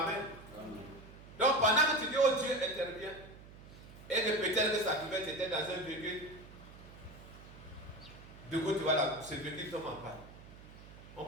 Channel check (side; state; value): right; noise; hum, 18 dB below the sound